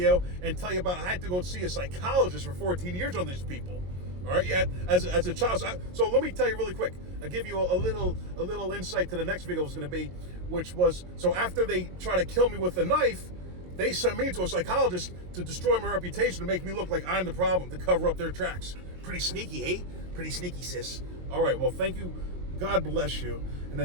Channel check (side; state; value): left; late; 22 ms